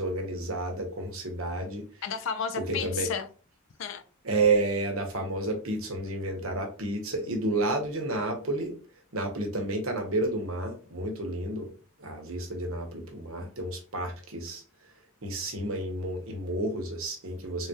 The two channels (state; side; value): normal; both; correlation 0.00